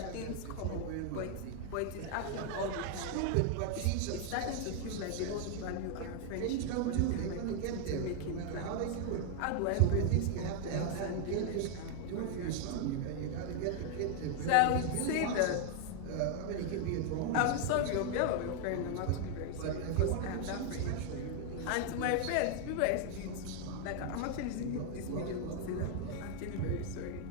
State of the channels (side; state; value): both; different; correlation 0.00